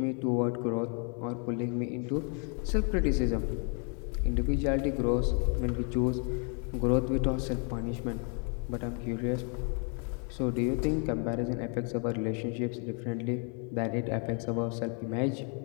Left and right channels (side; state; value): right; quieter; 39.4 dB